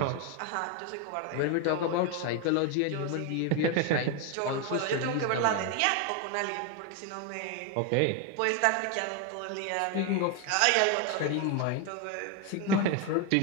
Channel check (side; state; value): both; different; correlation 0.01